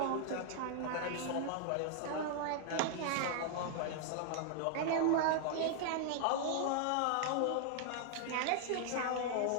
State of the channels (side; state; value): both; different; correlation 0.00